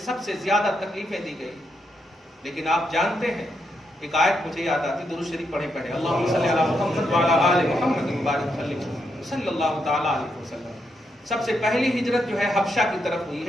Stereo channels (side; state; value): both; normal; correlation 0.81